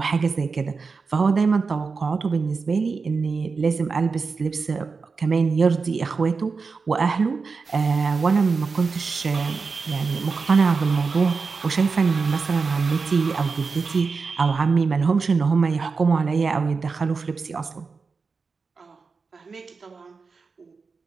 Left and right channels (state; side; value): quieter; left; 4.7 dB